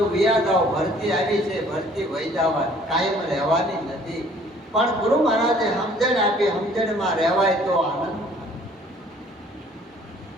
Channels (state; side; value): normal; both; correlation 0.56